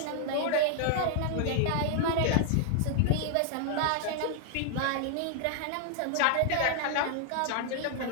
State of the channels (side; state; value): both; different; correlation 0.00